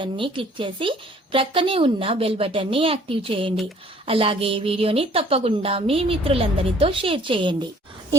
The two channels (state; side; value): normal; both; correlation 0.57